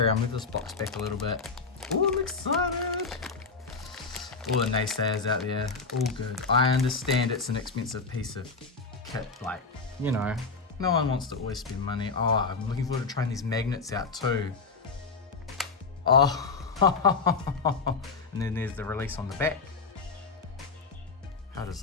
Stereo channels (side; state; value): right; quieter; 4.5 dB